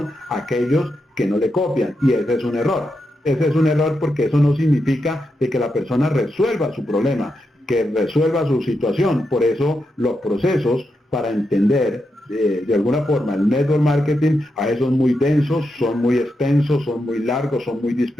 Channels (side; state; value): both; normal; correlation 0.85